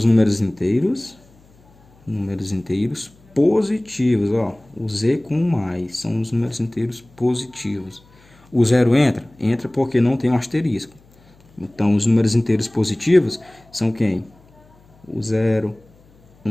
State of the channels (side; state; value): left; noise; hum, 29 dB below the sound